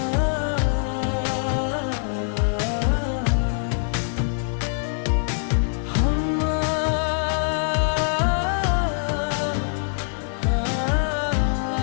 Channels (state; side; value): silent; right; digital silence